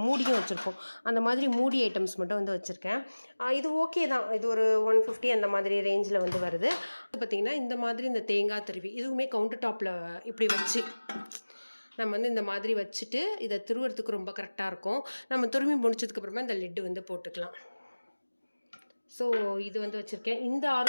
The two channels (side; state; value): both; inverted; correlation -1.00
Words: மூடியும் வச்சுருப்போம். அந்த மாதிரி மூடி ஐட்டம்ஸ் மட்டும் வந்து வச்சுருக்கேன். இது ஓகே தான். இது ஒரு 150 அந்த மாதிரி ரேஞ்சில் வந்து வருது. பார்த்திங்கன்னா இந்த மாதிரி இந்த தேங்காய் திருவி இதுவுமே கவுண்டர் டாப்பில் இப்படி வச்சு நம்ம வந்து இந்த மாதிரி வச்சுட்டு இதை துருவுறதுக்கு ரொம்ப கரெக்டாக இருக்கும். நம்ம துருவி முடிச்சதுக்கப்புறமா இந்த லிட்டு வந்து போட்டுக்கலாம். ஸோ இது வந்து வச்சுருக்கேன். இந்த